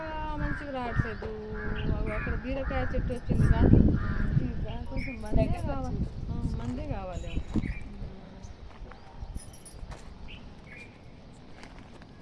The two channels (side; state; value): both; identical; correlation 1.00